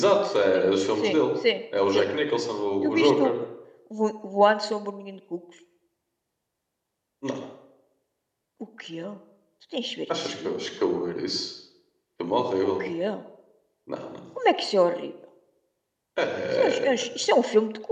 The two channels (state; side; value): identical; both; correlation 1.00